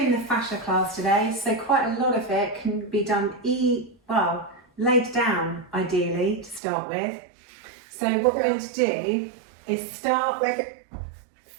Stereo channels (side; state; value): left; drops out; at 6.6 s